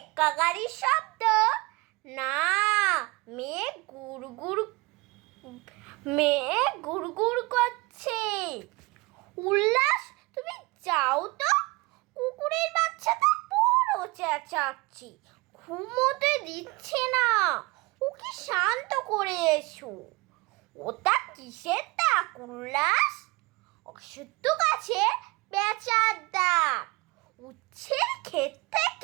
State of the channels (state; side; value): quieter; left; 23.7 dB